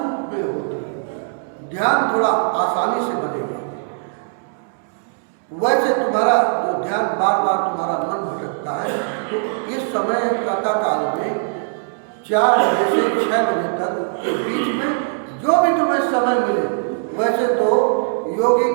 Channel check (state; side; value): silent; left; digital silence